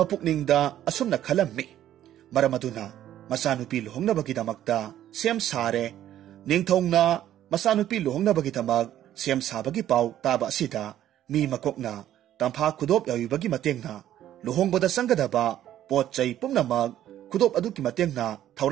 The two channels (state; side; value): quieter; left; 12.0 dB